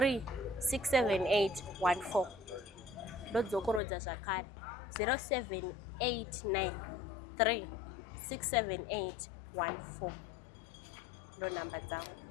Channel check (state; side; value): drops out; right; at 3.8 s